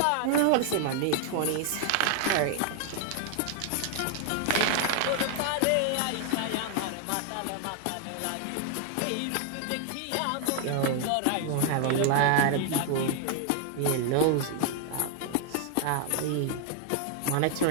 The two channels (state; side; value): different; both; correlation 0.00